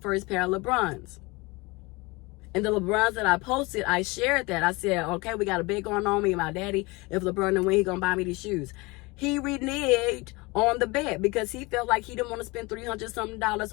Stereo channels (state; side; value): quieter; right; 24.7 dB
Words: pair of LeBrons. And the LeBrons that I posted, I shared that. I said, okay, we got a bet going on, me and my daddy. If LeBron didn't win, he gonna buy me these shoes. He reneged on the bet because he felt like he didn't want to spend $300-something